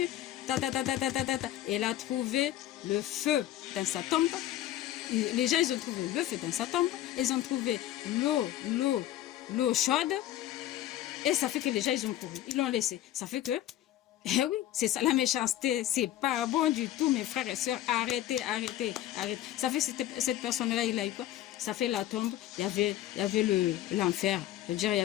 Elle a trouvé le feu dans sa tombe. Les gens, ils ont trouvé le feu dans sa tombe. Ils ont trouvé l'eau chaude. Et ça fait que les gens, ils ont couru. Ils l'ont laissé. Ça fait que, eh oui, c'est ça la méchanceté. C'est pas bon du tout, mes frères et sœurs. Arrêtez. Ça fait cette personne-là, il a eu quoi? Ça fait la tombe. Il y avait l'enfer. C'est-à-dire, il y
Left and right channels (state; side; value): quieter; right; 13.1 dB